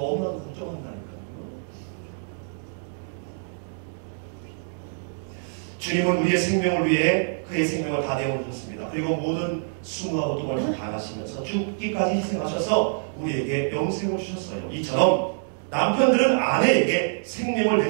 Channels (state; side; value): silent; left; digital silence